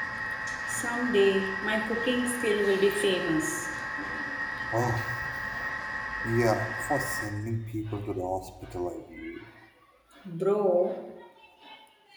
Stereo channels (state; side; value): identical; both; correlation 1.00